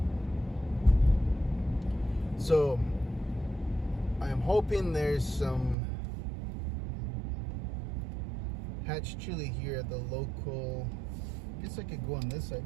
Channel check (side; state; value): left; drops out; at 5.8 s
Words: So I'm hoping there's some Hatch Chile here at the local. I guess I could go on this side.